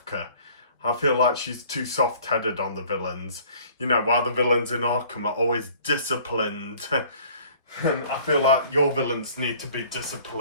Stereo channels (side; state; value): both; inverted; correlation -0.52